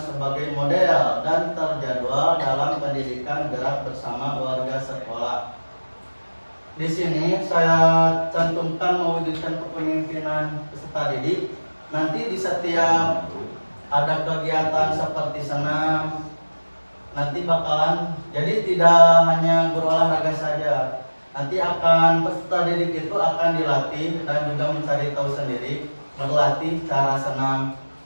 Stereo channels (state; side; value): inverted; both; correlation -1.00